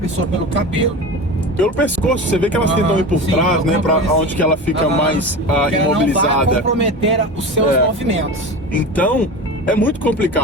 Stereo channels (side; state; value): both; normal; correlation 0.29